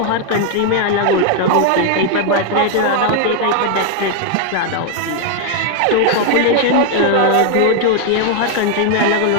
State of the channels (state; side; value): different; both; correlation 0.00